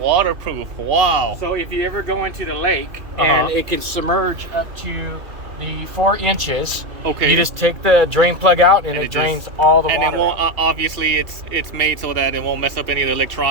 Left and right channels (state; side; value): late; left; 2.3 ms